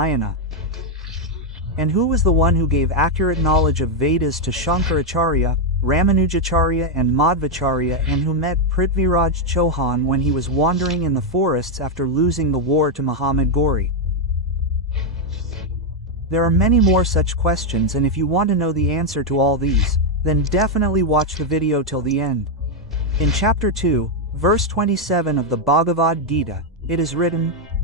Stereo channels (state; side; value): normal; both; correlation 0.01